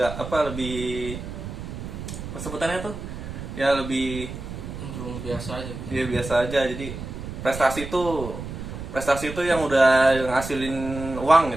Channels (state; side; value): noise; right; rumble, 9 dB below the sound